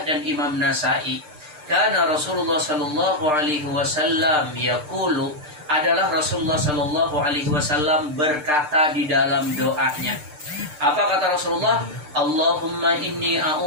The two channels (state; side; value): late; left; 6.7 ms